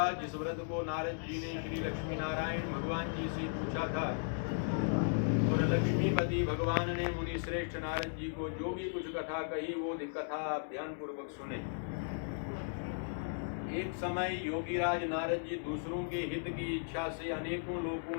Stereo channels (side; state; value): right; silent; digital silence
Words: जिस व्रत को नारद जी ने श्री लक्ष्मी नारायण भगवान जी से पूछा था, और लक्ष्मीपति भगवान ने मुनि श्रेष्ठ नारद जी को जो भी कुछ कथा कही वो कथा आप ध्यान पूर्वक सुने। एक समय योगीराज नारद जी दूसरों के हित की इच्छा से अनेकों